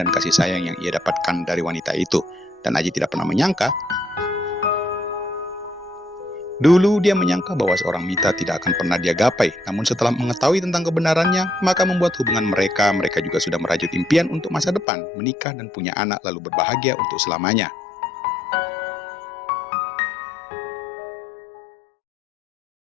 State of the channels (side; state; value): right; drops out; at 14.9 s